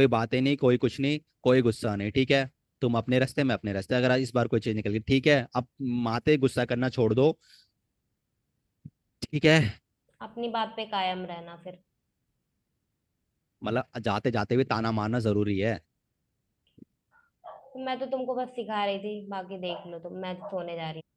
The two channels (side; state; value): both; identical; correlation 1.00